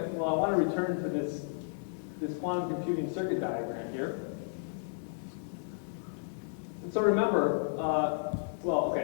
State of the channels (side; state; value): right; silent; digital silence